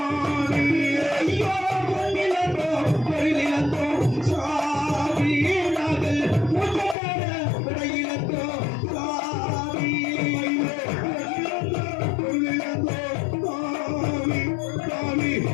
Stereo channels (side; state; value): right; drops out; at 7.0 s